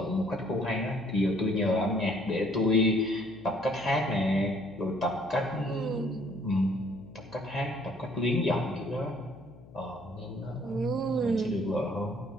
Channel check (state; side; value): noise; left; hum, 21 dB below the sound